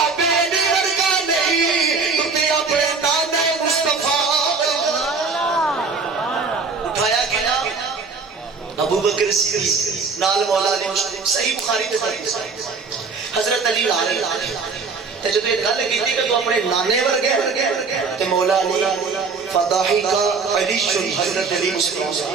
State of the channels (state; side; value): quieter; left; 4.6 dB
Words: بکر صدیق نال مولا علی مشکل صحیح بخاری دے حدیث حضرت علی آ رہے تے جدوں یہ گل کیتی کہ تو اپنے نانے ورگے تے مولا علی فضاحی کا علی حضرت علی